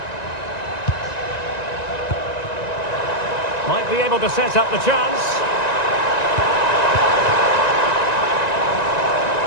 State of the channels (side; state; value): right; late; 1.9 ms